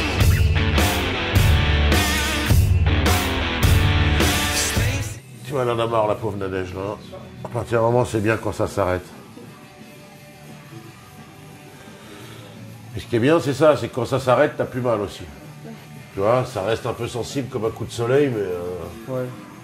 Elle en a marre, la pauvre Nadège, là. À partir d'un moment, c'est bien quand ça s'arrête. Et ce qui est bien, c'est ça, c'est que quand ça s'arrête, t'as plus mal aussi. Tu vois, ça reste un peu sensible comme un coup de soleil, mais... Ouais.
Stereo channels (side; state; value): both; identical; correlation 1.00